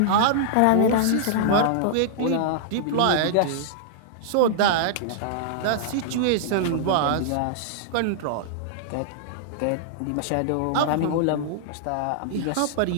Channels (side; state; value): both; different; correlation -0.01